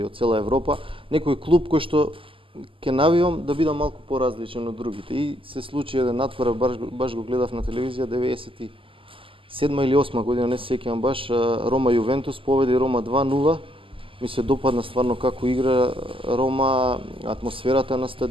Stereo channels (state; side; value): late; left; 0.25 ms